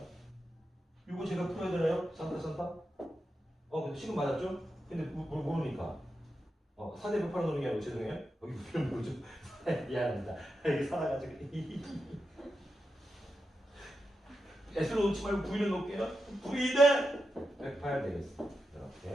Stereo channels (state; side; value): normal; both; correlation 0.88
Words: 이거 제가 풀어야 되나요? 산타? 근데 지금 맞았죠? 근데 모르니까. 4대 108로 놓는 게 아니고 죄송해요. 여기 부피는 뭐죠? 미안합니다. 여기 살아가지고. S로 놓지 말고 V를 놓을게요. V 대 108 되겠어.